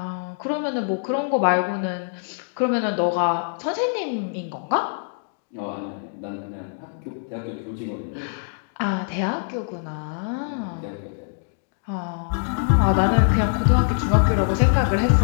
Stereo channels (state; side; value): silent; right; digital silence